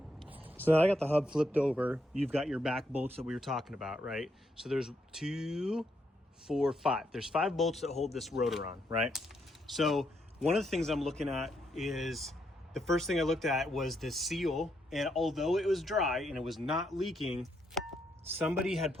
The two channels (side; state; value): both; normal; correlation 0.77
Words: So I got the hub flipped over. You've got your back bolts that we were talking about, right? So there's 2, 4, 5. There's 5 bolts that hold this rotor on, right? So one of the things I'm looking at is, the first thing I looked at was the seal. And although it was dry and it was not leaking, somebody had